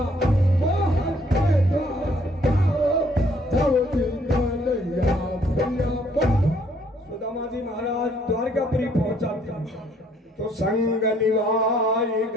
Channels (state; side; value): normal; both; correlation 0.64